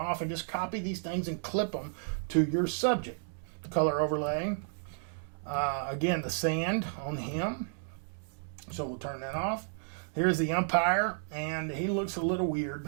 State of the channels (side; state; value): left; silent; digital silence